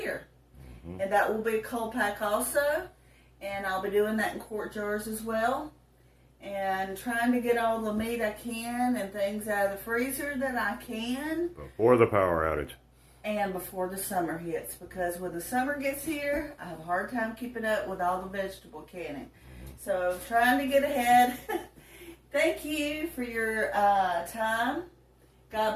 and that will be a cold pack also, and I'll be doing that in quart jars as well. And trying to get all the meat I can and things out of the freezer that I can. Before the power outage. And before the summer hits. Because when the summer gets here, I have a hard time keeping up with all the vegetable canning. So trying to get ahead. Thank you for your time.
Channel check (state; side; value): identical; both; correlation 1.00